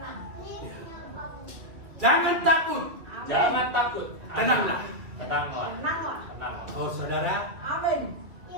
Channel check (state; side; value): late; left; 2.6 ms